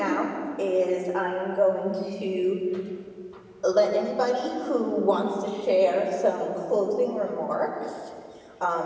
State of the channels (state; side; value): identical; both; correlation 1.00